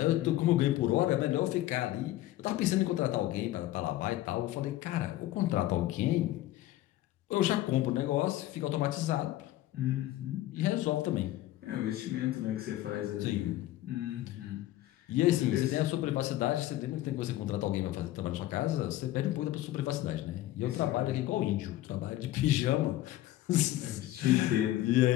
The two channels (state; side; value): quieter; right; 15.0 dB